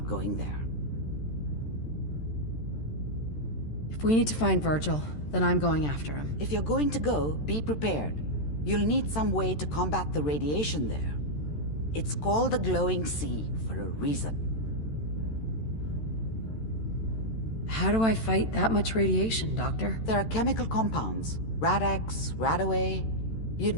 going there. If we need to find Virgil, then I'm going after him. If you're going to go, be prepared. You'll need some way to combat the radiation there. It's called the glowing sea for a reason. How do I fight that much radiation, Doctor? There are chemical compounds. Rad-X, Rad-Away. You'd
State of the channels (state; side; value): late; right; 13 ms